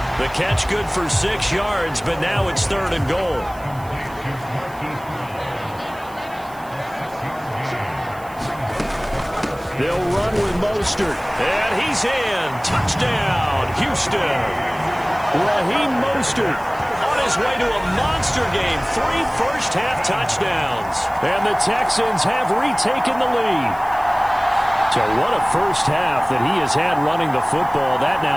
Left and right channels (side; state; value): right; noise; hiss, 23 dB below the sound